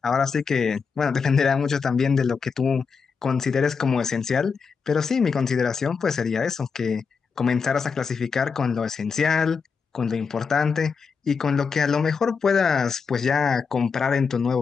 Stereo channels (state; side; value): quieter; right; 5.6 dB